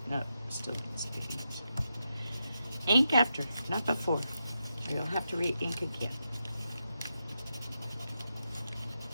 No, still needs to be inked. Ink after, not before. Or you'll have to re-ink again.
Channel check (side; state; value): both; inverted; correlation -0.87